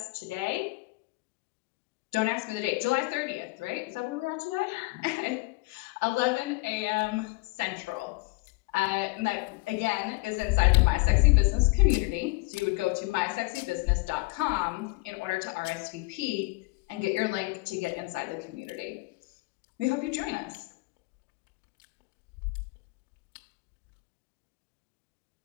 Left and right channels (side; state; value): right; quieter; 25.0 dB